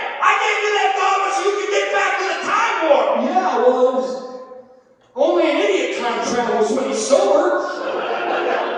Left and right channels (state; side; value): identical; both; correlation 1.00